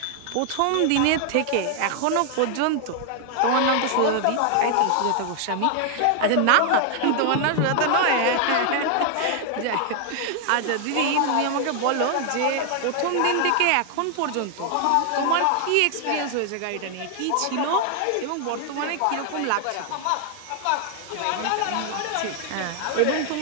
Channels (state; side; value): different; both; correlation 0.00